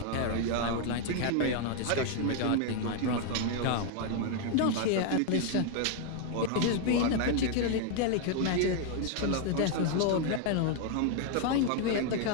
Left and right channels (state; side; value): different; both; correlation 0.00